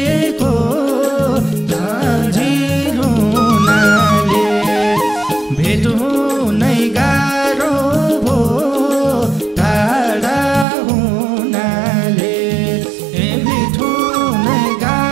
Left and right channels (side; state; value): left; drops out; at 10.7 s